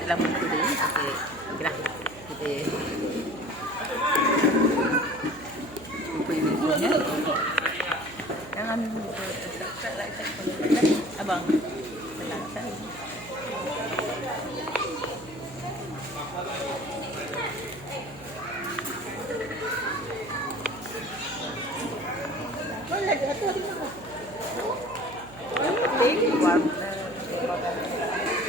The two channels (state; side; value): noise; right; hum, 17 dB below the sound